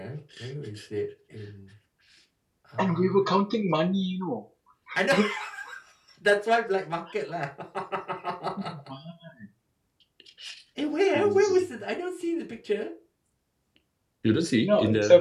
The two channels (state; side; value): identical; both; correlation 1.00